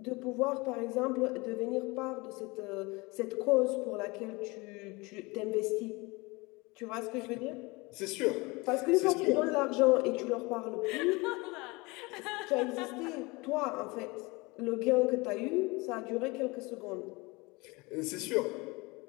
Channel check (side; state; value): right; quieter; 25.1 dB